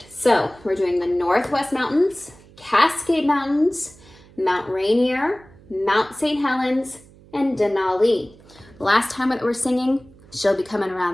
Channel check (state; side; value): noise; right; hum, 25 dB below the sound